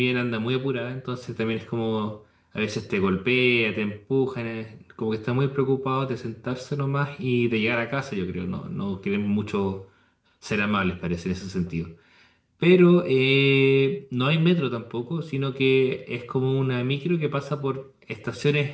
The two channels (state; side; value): identical; both; correlation 1.00